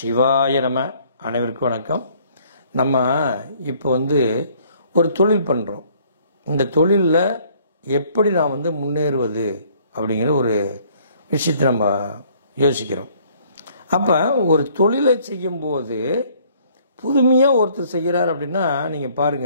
நம. அனைவருக்கும் வணக்கம். நம்ம இப்போ ஒரு தொழில் பண்ணுறோம். இந்த தொழிலில் எப்படி நான் முன்னேறுவது அப்படிங்கிற ஒரு விஷயத்தை நம்ம யோசிக்கிறோம். அப்போ ஒரு தொழிலை செய்யும்போது புதுமையாக ஒருத்தர் செய்கிறார் அப்படின்னா நீங்கள்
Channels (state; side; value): inverted; both; correlation -0.60